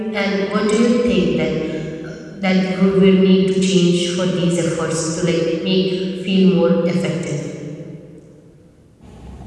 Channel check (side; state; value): both; identical; correlation 1.00